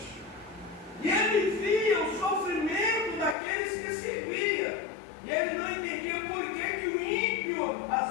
E ele via o sofrimento daqueles que serviam. E ele não entendia por que o ímpio,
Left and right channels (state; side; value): drops out; right; at 3.4 s